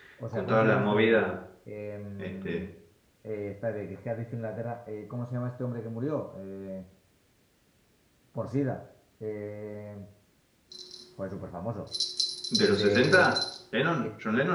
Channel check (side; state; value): both; identical; correlation 1.00